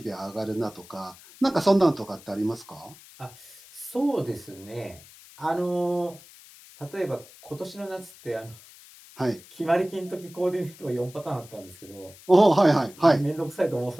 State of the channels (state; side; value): noise; left; hiss, 21 dB below the sound